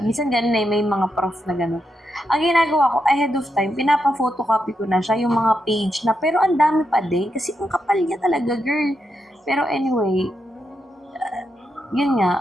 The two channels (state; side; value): normal; both; correlation 0.83